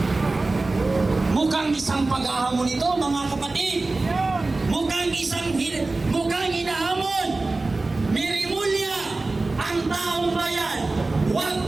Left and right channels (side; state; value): left; quieter; 3.3 dB